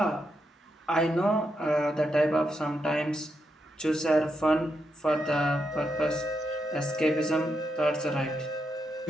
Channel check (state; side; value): normal; both; correlation 0.83